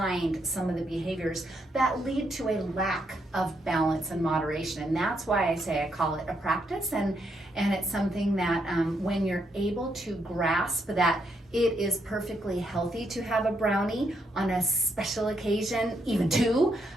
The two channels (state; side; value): normal; both; correlation 0.77